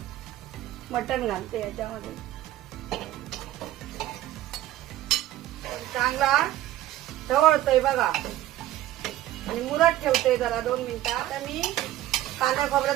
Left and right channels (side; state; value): left; quieter; 14.2 dB